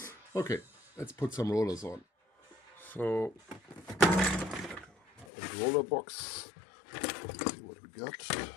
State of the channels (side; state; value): right; drops out; at 5.2 s